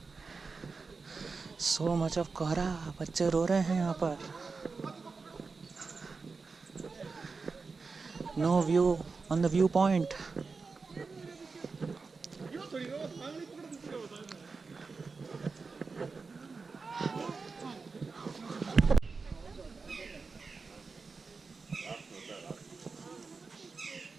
सो मच ऑफ कोहरा, बच्चे रो रहे हैं यहाँ पर। No view on the view point.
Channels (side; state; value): left; quieter; 4.5 dB